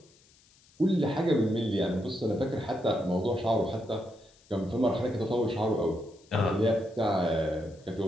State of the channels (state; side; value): noise; left; hiss, 29 dB below the sound